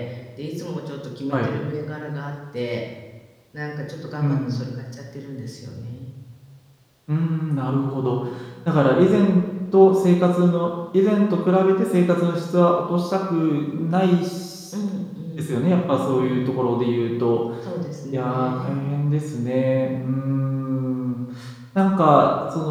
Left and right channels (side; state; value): both; identical; correlation 1.00